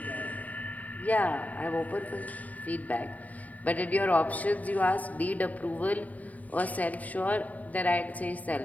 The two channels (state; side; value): late; right; 0.073 ms